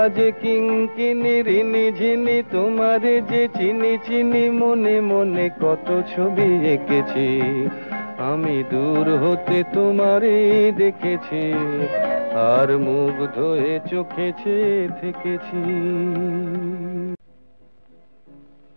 কিঙ্কিনি রিনি ঝিনি তোমারে যে চিনি চিনি, মনে মনে কত ছবি এঁকেছি, আমি দূর হতে তোমারেই দেখেছি, আর মুগ্ধ হয়ে চোখে চেয়ে থেকেছি।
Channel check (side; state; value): both; inverted; correlation -1.00